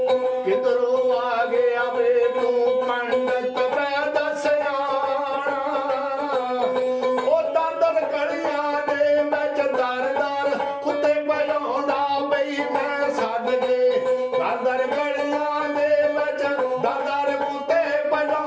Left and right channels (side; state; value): both; identical; correlation 1.00